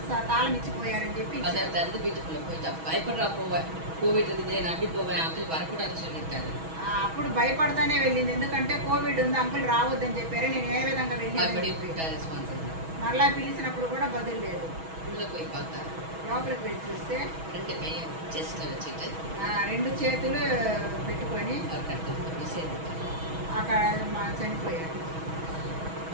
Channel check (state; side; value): late; left; 6.2 ms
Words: తాళం ఇచ్చిపోయారని చెప్పి அதை திறந்து வீட்டுக்குள்ள போயிட்டா, பயப்படுறா போவேன், கோவிட் இருக்குது நான் அப்படி போவேன், அங்கிள் வரக்கூடாதுன்னு சொல்லியிருக்காரு. అప్పుడు భయపడతానే వెళ్ళింది, ఎందుకంటే కోవిడ్ ఉంది అంకుల్ రావద్దని చెప్పారు. నేను ఏ విధంగా மறுபடியும் వెళ్ళి போயிட்டா ரெஸ்பான்ஸ் இல்லை. మరలా పిలిచినప్పుడు కూడా బదులు లేదు. உள்ள போய் பார்த்தா లోపలికి వెళ్ళి చూస్తే 2 கையை செஸ்ட்ல வச்சுட்டு 2 చేతులు పెట్టుకొని அவர் கட்டு అక్కడ చనిపోయారు.